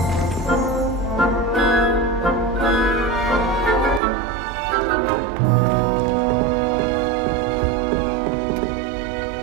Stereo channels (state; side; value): drops out; left; at 4.0 s